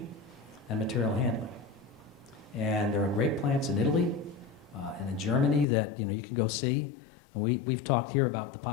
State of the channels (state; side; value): drops out; right; at 5.7 s